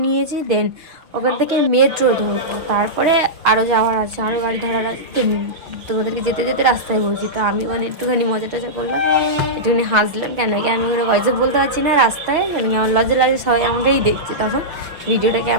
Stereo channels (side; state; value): left; late; 6.2 ms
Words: নিয়েছি। দেন ওখান থেকে মেট্রো ধরবো, তারপরে আরও যাওয়ার আছে, আরও গাড়ি ধরার আছে। তোমাদেরকে যেতে যেতে রাস্তায় বলছি। তো আমি মানে একটুখানি মজা টজা করলাম, একটুখানি হাসলাম, কেন কি আমি মানে ভয়েসে বলতে পারছি না রাস্তায়, কেন কি আমার লজ্জা লাগে, সবাই আমাকেই দেখছে। তখন ভিডিওটা